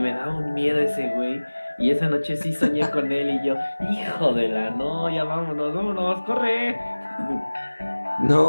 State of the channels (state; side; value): inverted; both; correlation -1.00